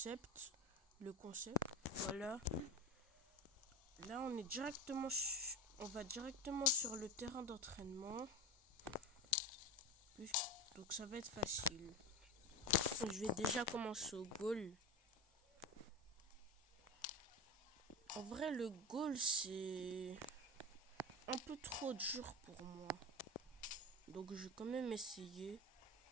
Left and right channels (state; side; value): normal; both; correlation 0.24